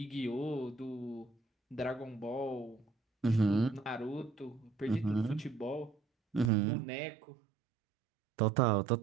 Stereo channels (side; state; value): left; drops out; at 6.5 s